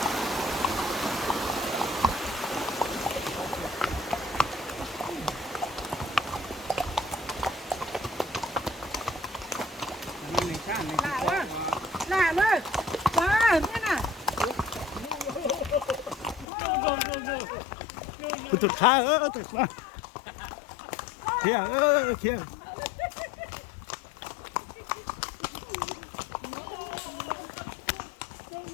Là ơi. Ba, thế nào? Tụt xa tụt xa. Kia, kia.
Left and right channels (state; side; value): drops out; right; at 16.4 s